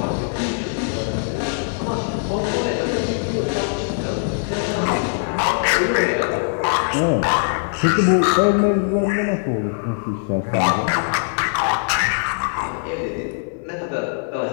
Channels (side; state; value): right; silent; 59 dB below the other